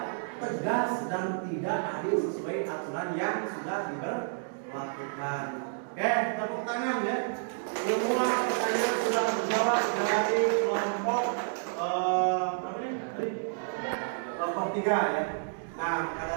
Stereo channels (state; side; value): silent; left; digital silence